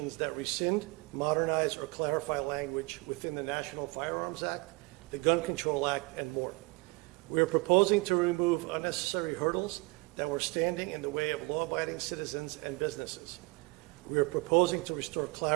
that rescind, modernize, or clarify language within the National Firearms Act, the Gun Control Act, and more. We are proposing to remove unnecessary hurdles that were standing in the way of law-abiding citizens and businesses. We are proposing to restore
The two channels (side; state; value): left; quieter; 26.0 dB